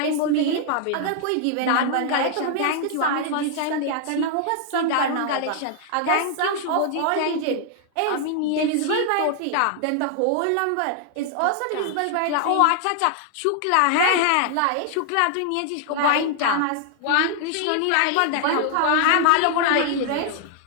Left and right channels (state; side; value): different; both; correlation 0.00